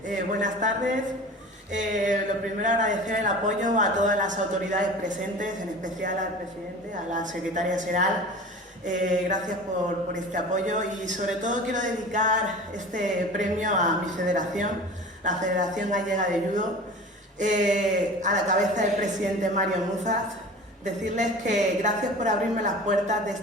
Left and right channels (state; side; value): normal; both; correlation 0.38